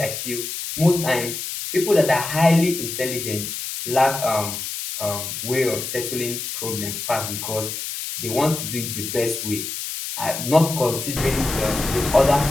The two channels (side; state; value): left; noise; hiss, 6 dB below the sound